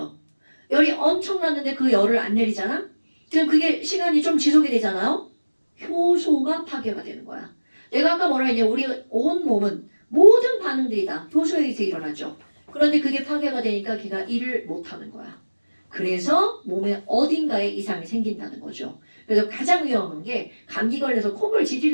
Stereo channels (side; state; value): both; inverted; correlation -1.00